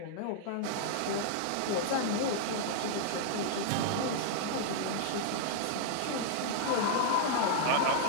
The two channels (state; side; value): different; both; correlation -0.01